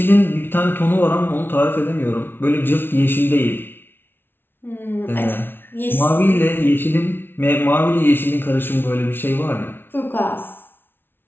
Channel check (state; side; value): late; right; 0.11 ms